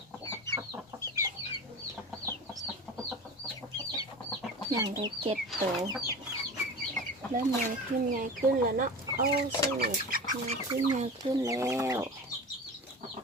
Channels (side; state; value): both; normal; correlation 0.32